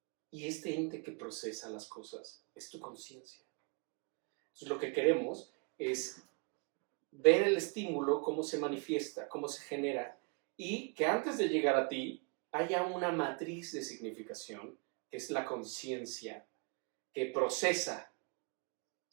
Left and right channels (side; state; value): left; quieter; 34.4 dB